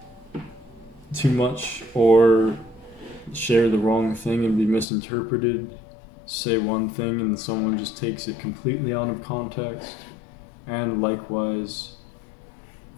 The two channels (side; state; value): right; drops out; at 4.9 s